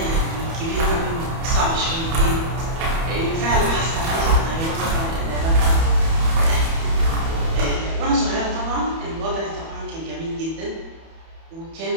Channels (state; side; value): late; left; 31 ms